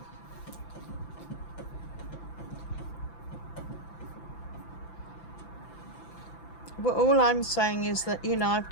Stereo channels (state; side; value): late; right; 5.9 ms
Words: Well, all I'm saying is that, you know, I've